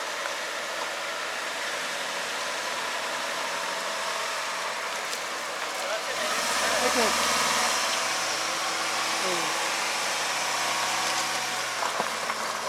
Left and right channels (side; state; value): both; identical; correlation 1.00